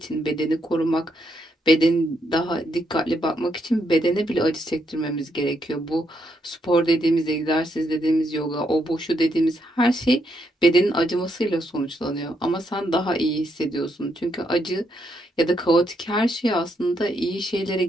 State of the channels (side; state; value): both; normal; correlation 0.77